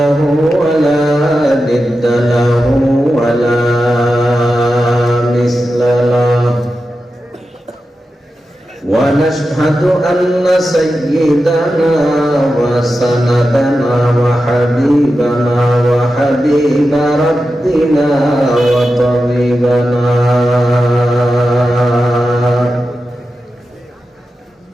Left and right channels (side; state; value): both; normal; correlation 0.91